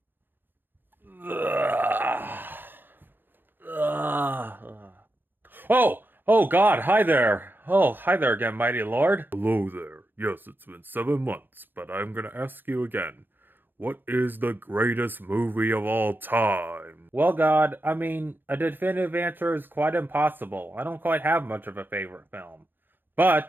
Ugh. Ugh. Oh, God, hi there. Oh, hi there again, mighty lord. Hello there. Yes, it's been 7 months, but I'm gonna ask you again. What is the greatest movie of all time? Well, God, a definitive answer is quite impossible. I don't quite have much of a favorite film.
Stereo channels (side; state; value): left; late; 0.096 ms